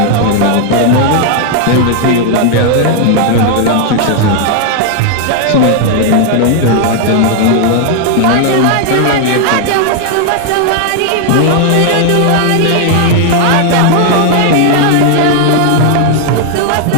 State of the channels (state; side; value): different; both; correlation 0.00